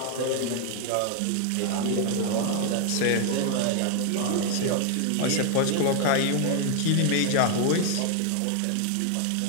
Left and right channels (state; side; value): different; both; correlation 0.00